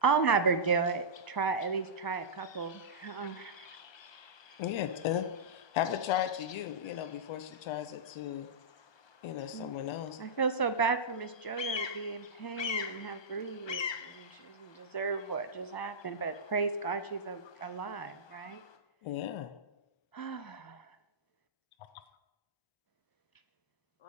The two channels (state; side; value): late; right; 1.2 ms